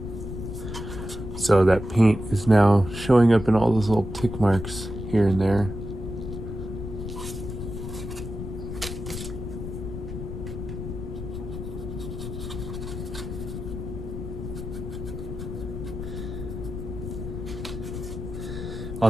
So that paint is now showing up in all those little tick marks here and there.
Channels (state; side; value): noise; left; rumble, 7 dB below the sound